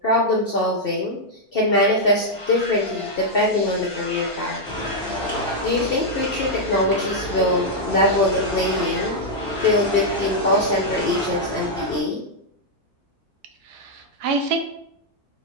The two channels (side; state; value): both; normal; correlation -0.03